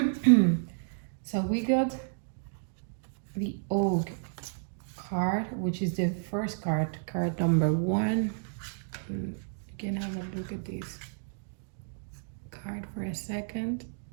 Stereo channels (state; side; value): silent; left; digital silence